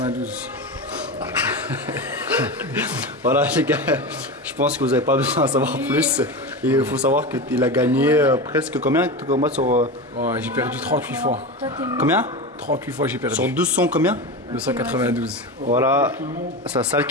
Voilà les gars, je pense que vous n'avez pas besoin d'en savoir plus. Et il faut savoir qu'il a gagné presque combien de combats sur... Ouais, j'ai perdu 38 fois. Combien? 38 fois j'ai perdu. Sur 200 combien? 292. Voilà, sa salle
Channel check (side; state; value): both; normal; correlation 0.23